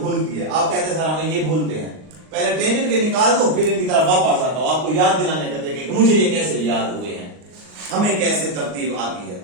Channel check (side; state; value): left; late; 39 ms